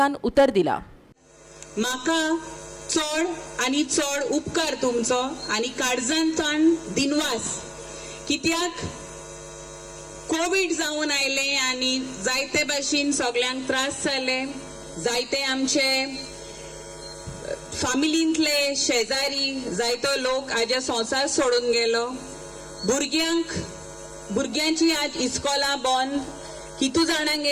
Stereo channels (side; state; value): both; identical; correlation 1.00